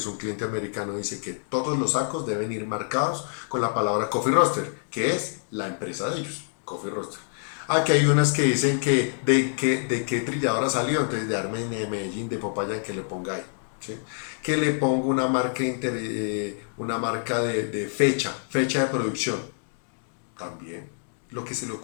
un cliente americano, dice que todos los sacos deben ir marcados con la palabra Coffee Roaster, que es la empresa de ellos, Coffee Roaster. Aquí hay unas que dicen que de qué trilladora salió, entonces de Armen, de Medellín, de Popayán, que le ponga ahí. ¿Sí? Que le pongo una marca de fecha de producción. También. Lo que se le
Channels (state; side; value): silent; right; 58 dB below the other